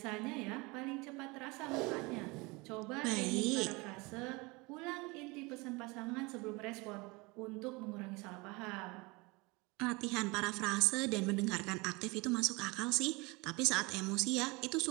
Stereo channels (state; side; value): quieter; left; 25.7 dB